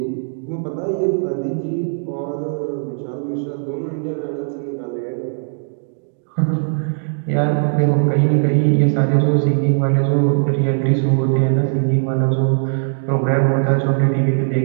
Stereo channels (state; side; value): silent; left; digital silence